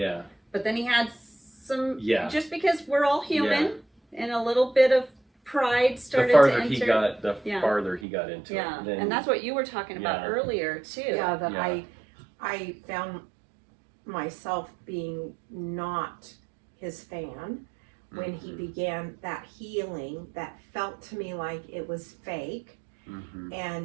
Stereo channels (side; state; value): left; drops out; at 8.1 s